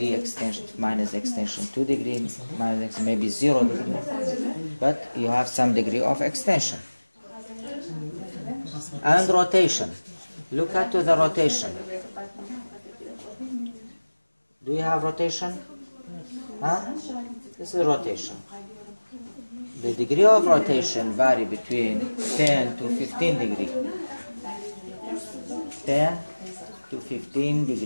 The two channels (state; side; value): inverted; both; correlation -1.00